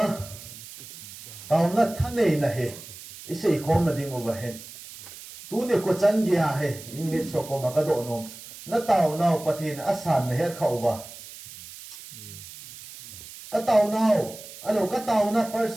na thân này na he isei khom na ding overhead tu ne ko chan gya he in mit so ko ma ka do nom na tàu nào pathin asan na he khau wa ka tàu nào alo ka tàu na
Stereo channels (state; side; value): noise; right; hiss, 15 dB below the sound